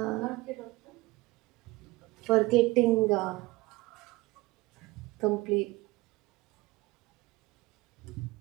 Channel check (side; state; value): left; quieter; 20.8 dB